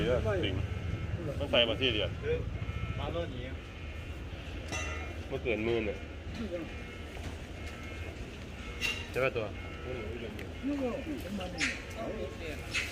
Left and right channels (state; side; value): identical; both; correlation 1.00